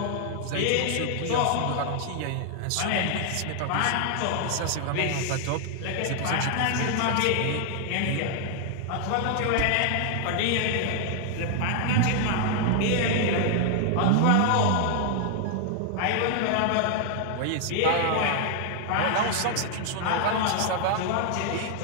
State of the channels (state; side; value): different; both; correlation 0.00